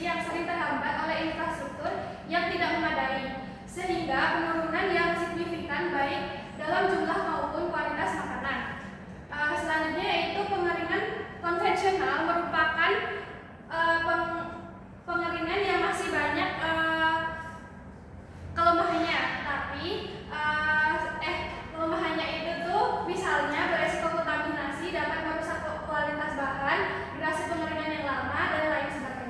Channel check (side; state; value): both; identical; correlation 1.00